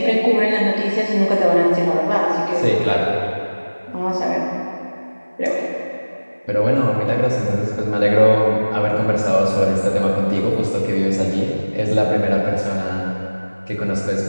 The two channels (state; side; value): inverted; both; correlation -1.00